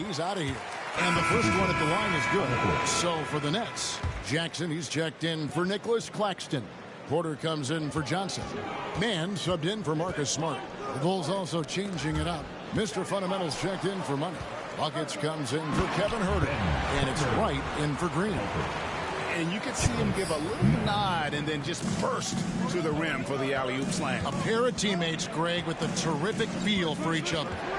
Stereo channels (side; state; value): both; identical; correlation 1.00